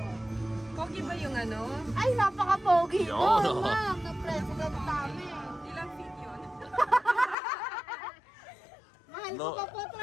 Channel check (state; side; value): drops out; right; at 7.4 s